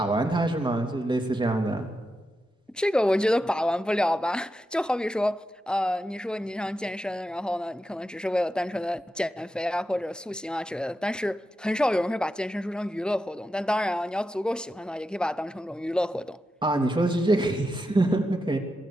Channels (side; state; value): both; normal; correlation 0.88